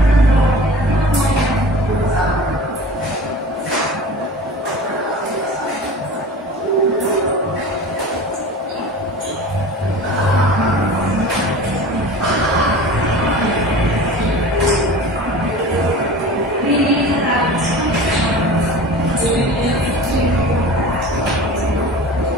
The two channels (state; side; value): normal; both; correlation 0.37